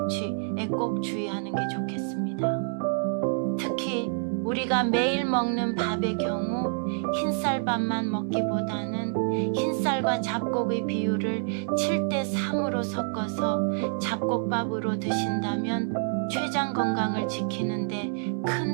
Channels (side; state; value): left; silent; 60 dB below the other